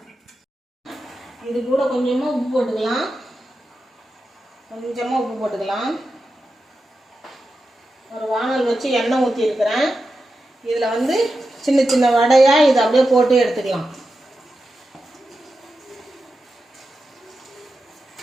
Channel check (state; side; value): normal; both; correlation 0.90